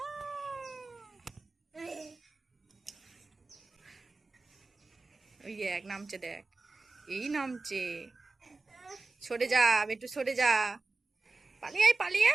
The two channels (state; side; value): quieter; left; 3.6 dB